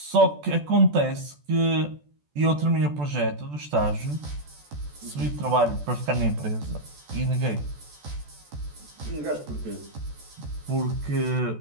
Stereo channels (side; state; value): left; late; 14 ms